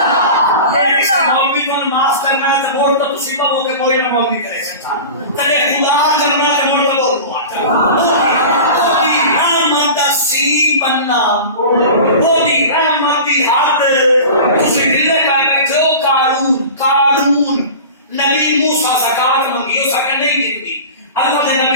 مولوی کو معاف کرنا ہے تو بول تو مصیبہ ہو کے کوئی نہ مولوی کرے سکتا تلے خدا کرنا ہے مول کو بننا وہ دی رحمتی ہاتھ کسی دلے کا بیٹھو قارون نبی موسیٰ زکاة منگی اس کا نہیں دیتی اللہ نے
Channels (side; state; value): both; inverted; correlation -0.34